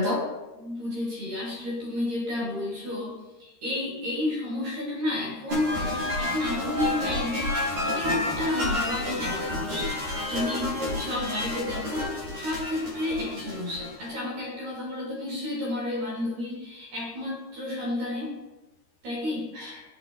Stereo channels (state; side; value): late; left; 13 ms